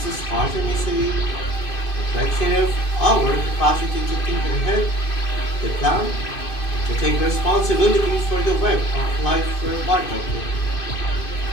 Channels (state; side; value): late; right; 2.5 ms